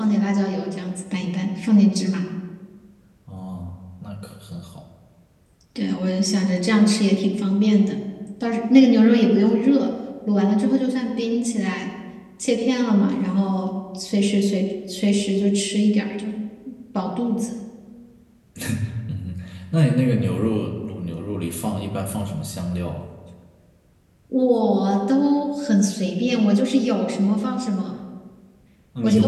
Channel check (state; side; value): identical; both; correlation 1.00